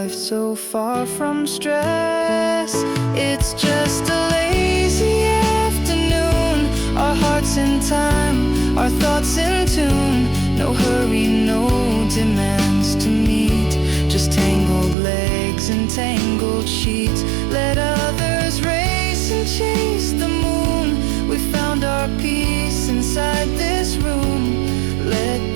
so far from stress. It's just a lazy afternoon, our hearts in time, our thoughts in tune. No hurry, no demands to meet, just tangled legs and tangled sheets. Let others race and chase the moon. We found our peace inside this room. Let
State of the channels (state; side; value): drops out; left; at 15.0 s